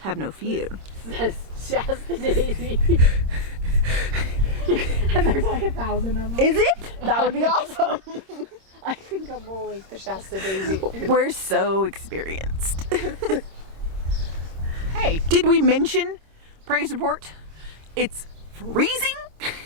no fear. It says Shasta Daisies. And there's like 1,000 of them. Is it? That would be awesome. I think I'm always the Shasta Daisy. We're so experienced. Hey. Did we mention praise report? It's freezing.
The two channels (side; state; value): left; late; 26 ms